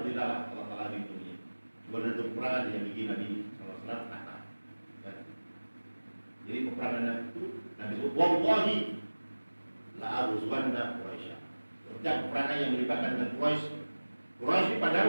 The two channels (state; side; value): inverted; both; correlation -1.00